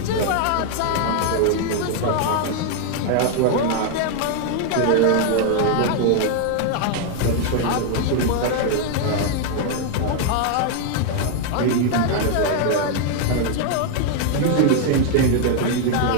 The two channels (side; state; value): both; different; correlation 0.00